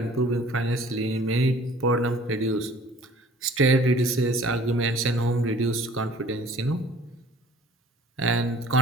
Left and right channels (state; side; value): normal; both; correlation 0.52